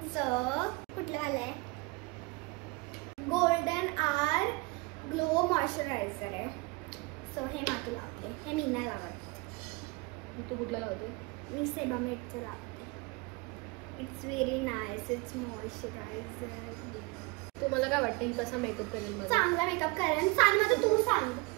कुठलं वालं आहे. गोल्डन आर ग्लो मॉइश्चरायझर आहे. सो हे मातू लावते. हे मी नाही लावत. तू कुठलं लावते. मी सेबामेडचं लावते. It's very nice. It's moisturiser. तुम्हाला काय वाटतं ही कसा मेकअप करेल. मला चांगला मेकअप करेल. सांग माझं तू सांग.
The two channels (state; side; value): quieter; left; 25.7 dB